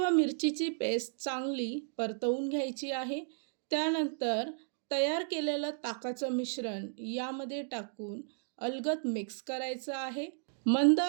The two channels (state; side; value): silent; left; digital silence